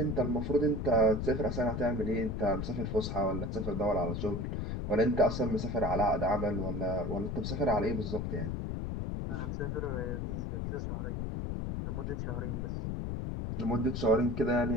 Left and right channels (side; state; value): left; noise; rumble, 2 dB below the sound